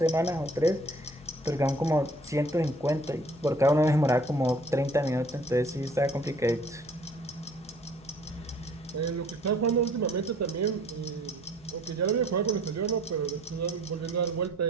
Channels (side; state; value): both; normal; correlation 0.55